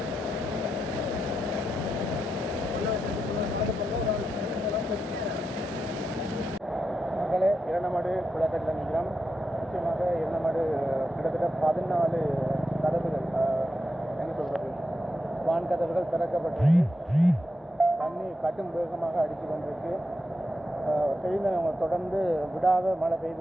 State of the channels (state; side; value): normal; both; correlation 0.86